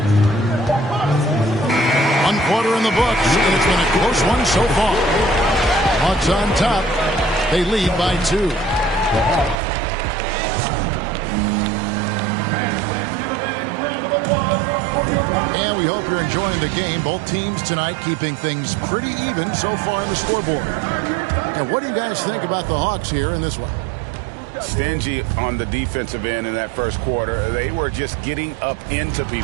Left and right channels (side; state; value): left; drops out; at 9.6 s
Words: One quarter in the books, and it's been a close one so far. Hawks on top. They lead by 2. And we hope you're enjoying the game. Both teams tonight keeping things pretty even so far in the scoreboard. And what do you guys think about the Hawks here in this one? Stingy on the defensive end in that first quarter. They were just getting up into